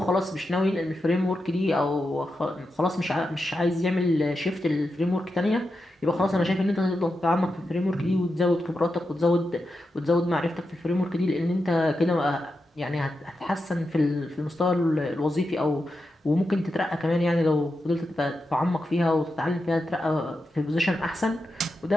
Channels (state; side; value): normal; both; correlation 0.88